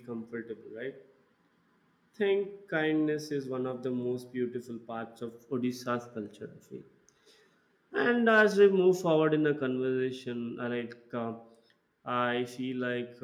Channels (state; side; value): identical; both; correlation 1.00